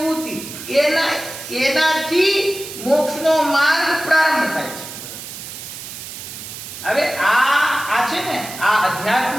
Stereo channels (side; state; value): right; noise; hiss, 11 dB below the sound